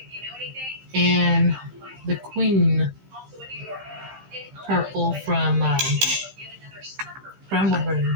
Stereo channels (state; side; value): late; left; 15 ms